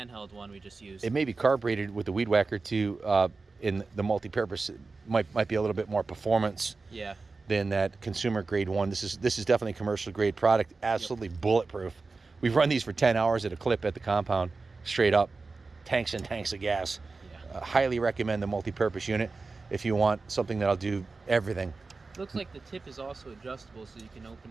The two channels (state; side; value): quieter; left; 4.0 dB